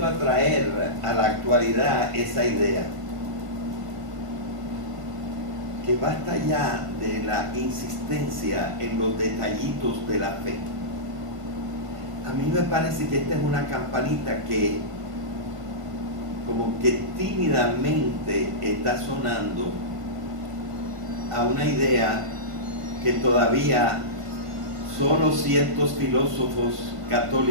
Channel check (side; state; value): left; late; 1.5 ms